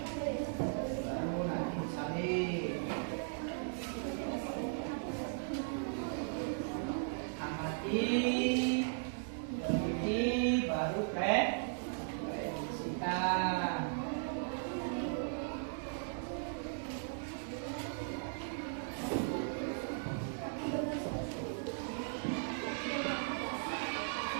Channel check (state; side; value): silent; left; digital silence